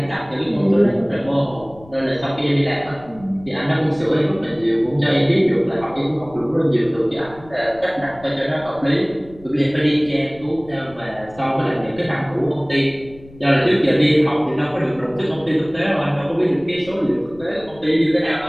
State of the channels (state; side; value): noise; left; rumble, 22 dB below the sound